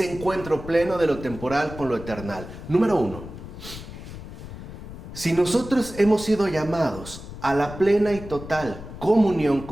encuentro pleno de lo temporal con lo eternal. Número uno, si nosotros hemos sido llamados a la plena y total comunión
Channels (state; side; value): noise; left; rumble, 12 dB below the sound